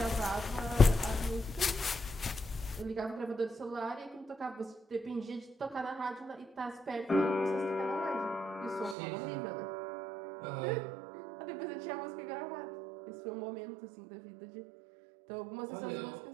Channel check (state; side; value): drops out; left; at 9.0 s